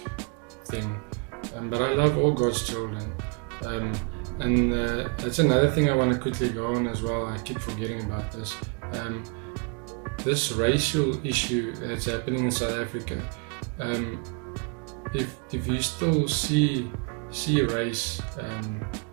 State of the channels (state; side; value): quieter; left; 33.4 dB